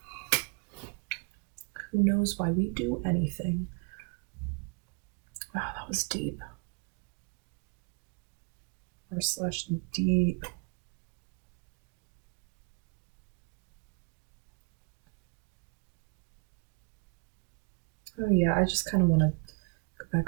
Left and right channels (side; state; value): left; quieter; 37.1 dB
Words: who knows why we do anything. Wow, that was deep. R slash deep. Oh yeah, I just kind of want to go